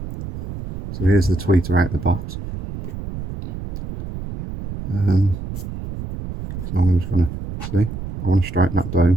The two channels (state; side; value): noise; right; rumble, 8 dB below the sound